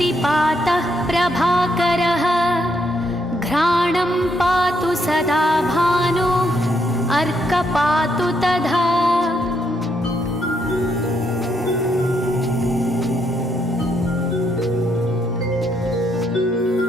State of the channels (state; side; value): normal; both; correlation 0.75